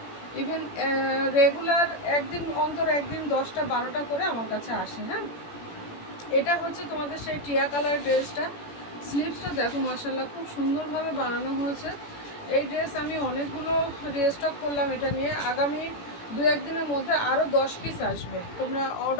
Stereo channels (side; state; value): right; late; 17 ms